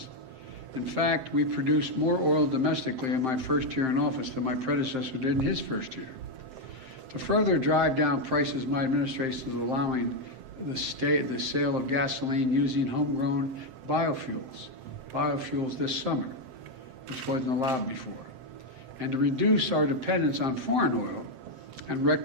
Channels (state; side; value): late; left; 7.7 ms